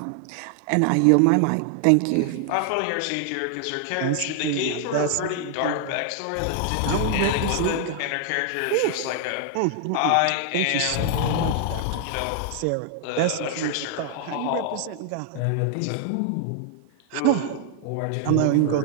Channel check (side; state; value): both; different; correlation 0.00